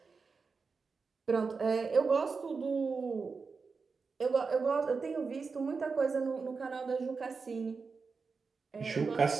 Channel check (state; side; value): quieter; left; 4.8 dB